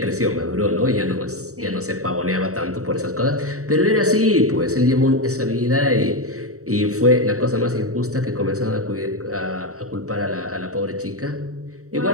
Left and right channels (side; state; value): left; late; 0.65 ms